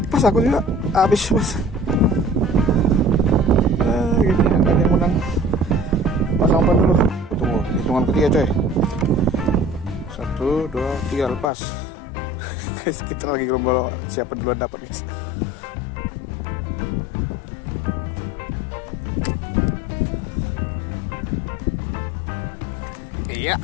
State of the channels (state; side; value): drops out; right; at 11.5 s